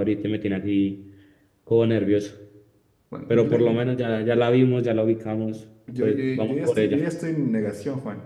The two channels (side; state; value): both; identical; correlation 1.00